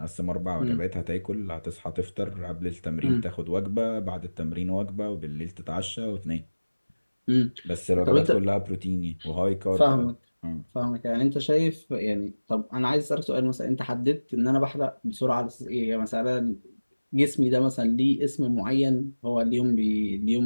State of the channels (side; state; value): both; inverted; correlation -1.00